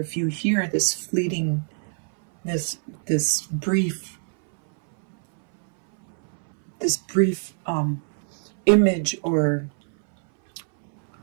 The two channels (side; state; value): left; silent; 61 dB below the other